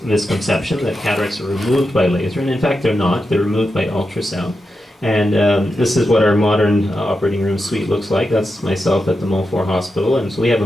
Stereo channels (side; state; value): both; normal; correlation 0.88